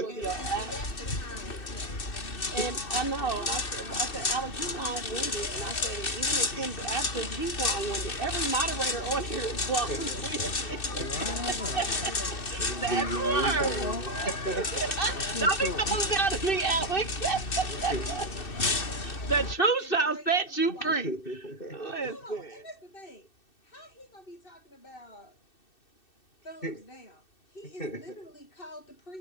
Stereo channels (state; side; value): late; right; 2.6 ms